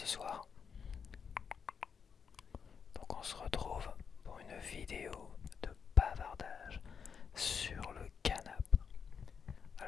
soir? Donc on se retrouve pour une vidéo de bavardage sur le canap.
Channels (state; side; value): quieter; right; 6.4 dB